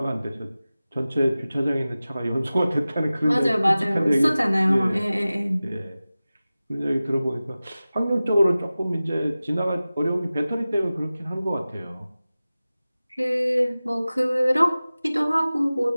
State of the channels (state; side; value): inverted; both; correlation -0.96